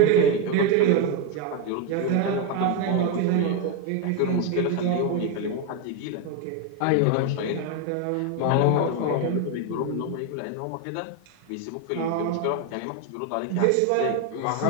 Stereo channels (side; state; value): both; different; correlation 0.02